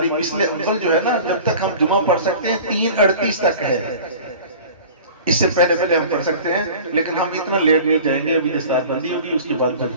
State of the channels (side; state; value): both; inverted; correlation -0.40